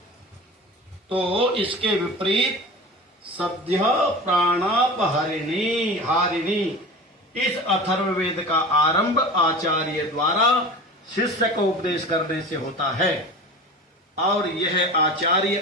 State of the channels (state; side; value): normal; both; correlation 0.34